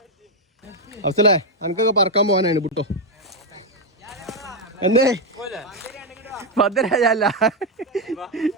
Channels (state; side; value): normal; both; correlation 0.03